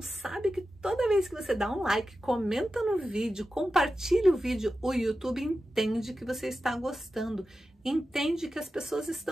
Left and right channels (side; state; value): both; normal; correlation 0.92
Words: que toda vez que você dá um like, comenta no vídeo, compartilha o vídeo, o YouTube entende que você está gostando, entende que as pessoas